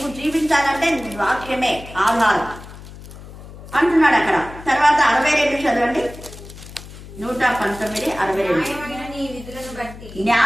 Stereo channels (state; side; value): noise; left; hum, 16 dB below the sound